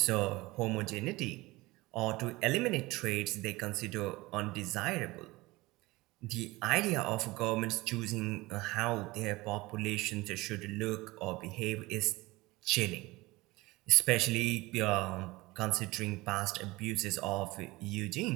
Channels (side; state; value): left; quieter; 21.0 dB